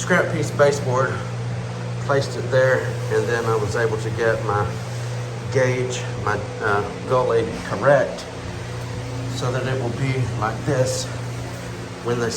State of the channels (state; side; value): identical; both; correlation 1.00